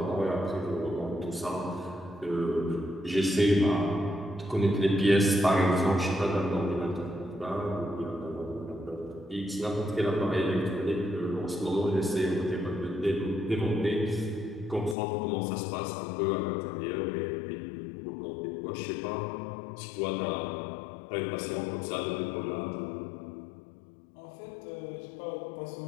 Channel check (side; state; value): right; drops out; at 15.0 s